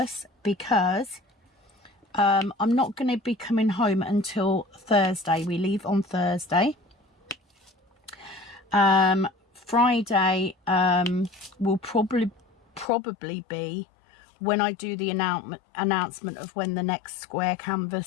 because I'm not going to be coming home until Thursday. We leave on Thursday. Friday will probably be when I do the announcement of when the next square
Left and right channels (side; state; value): right; drops out; at 12.9 s